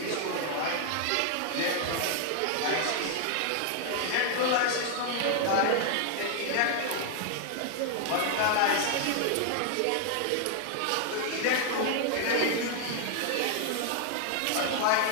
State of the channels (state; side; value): different; both; correlation 0.00